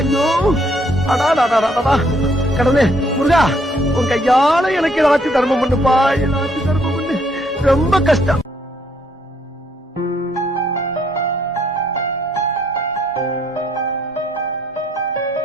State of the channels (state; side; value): normal; both; correlation 0.69